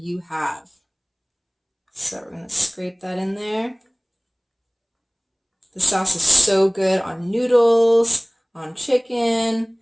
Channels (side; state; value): both; identical; correlation 1.00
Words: have. So we're going to scrape that in there. The sauce is so good on noodles, on chicken,